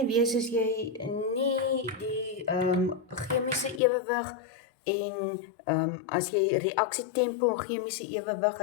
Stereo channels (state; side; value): drops out; right; at 3.8 s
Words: wees as jy nie die chemiese ewewig en as jy reaksietempo en chemiese ewewig,